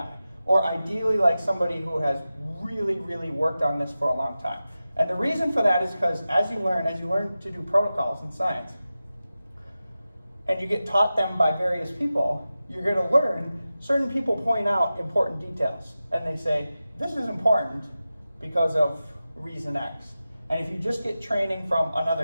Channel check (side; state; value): both; inverted; correlation -0.94